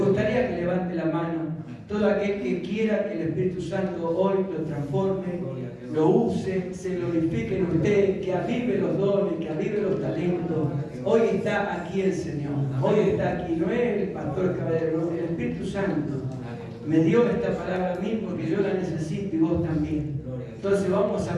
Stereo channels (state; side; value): identical; both; correlation 1.00